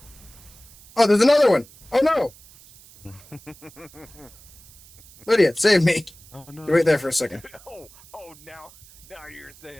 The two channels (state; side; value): noise; right; hiss, 23 dB below the sound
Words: Oh, there's another one. Oh no. Lydia, save me. Oh no. You wait there for a second. oh, now you're